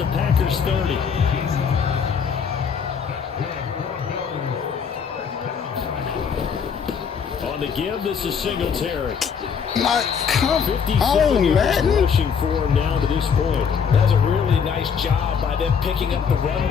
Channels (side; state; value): right; quieter; 6.6 dB